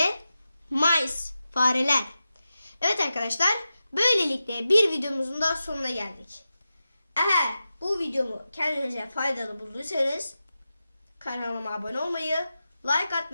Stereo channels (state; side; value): inverted; both; correlation -0.92